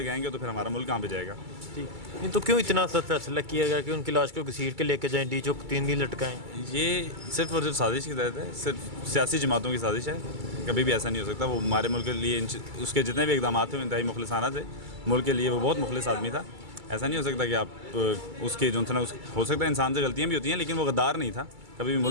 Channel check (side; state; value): left; late; 2.3 ms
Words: तो फिर हमारा मुल्क कहाँ पे जाएगा। जी, तो क्यों इतना सख्त फैसला किया गया कि उनकी लाश को घसीट के लेके जाएं, डी चौक 3 दिन लटकाएं? ये सिर्फ और सिर्फ साजिश की तहत है, सिर्फ सियासी जमातों की साजिश है। कभी भी ऐसा नहीं हो सकता। वो हमारे मुल्क के लिए उसके जितने भी इकदाम थे वो इंतहाई मुखलिसाना थे, मुल्क के लिए वो बहुत मुखलिस आदमी था। ऐसा नहीं हो सकता कि आप उसके जो है ना, हो सकता है इंसान से गलतियाँ भी होती हैं, लेकिन वो गद्दार नहीं था, कभी भी